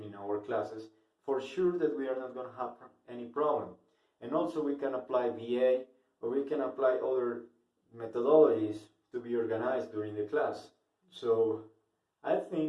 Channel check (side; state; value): both; identical; correlation 1.00